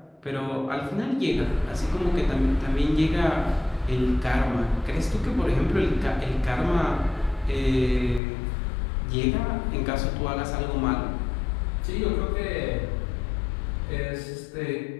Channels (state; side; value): drops out; right; at 8.2 s